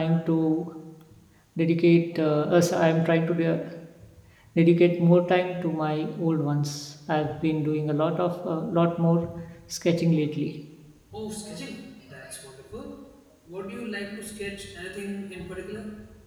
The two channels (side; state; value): both; identical; correlation 1.00